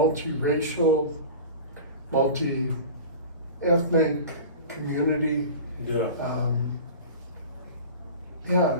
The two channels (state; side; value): inverted; both; correlation -0.35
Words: multi-ethnic community. Yeah.